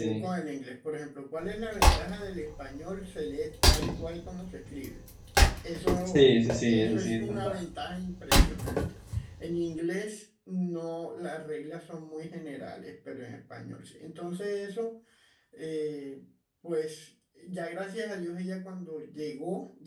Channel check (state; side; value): identical; both; correlation 1.00